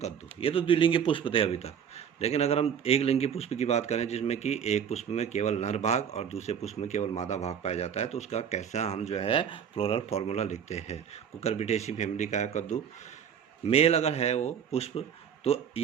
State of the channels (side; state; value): left; quieter; 8.0 dB